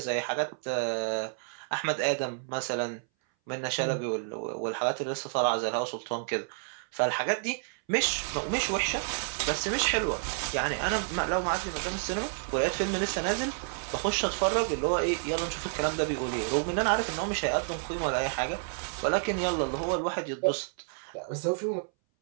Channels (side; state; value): left; silent; 58 dB below the other